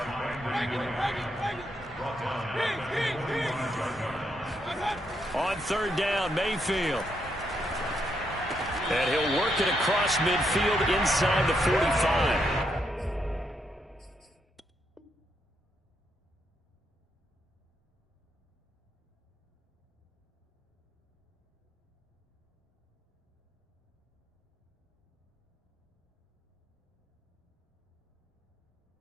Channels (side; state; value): both; normal; correlation 0.78